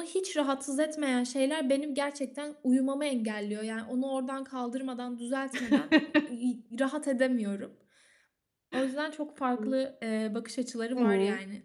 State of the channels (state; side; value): identical; both; correlation 1.00